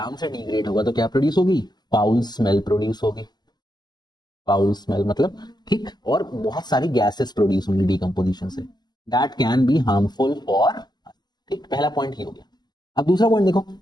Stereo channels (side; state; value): right; late; 0.21 ms